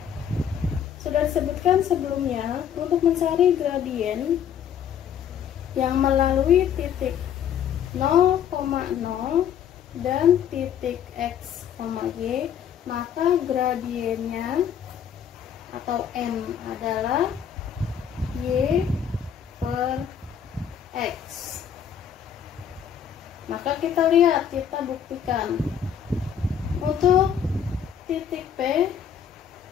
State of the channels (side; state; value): right; quieter; 8.6 dB